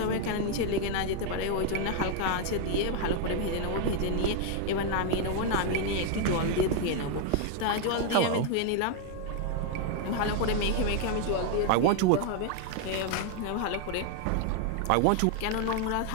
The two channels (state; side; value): different; both; correlation 0.00